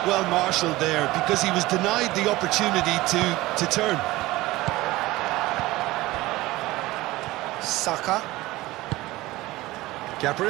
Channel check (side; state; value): left; quieter; 18.8 dB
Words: well marshalled there because he was denied the opportunity to turn. Saka.